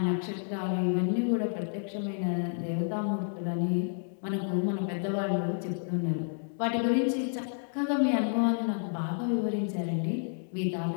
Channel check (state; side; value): silent; right; 58 dB below the other